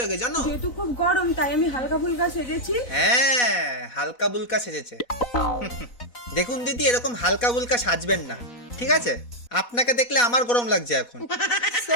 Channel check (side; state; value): right; late; 4.2 ms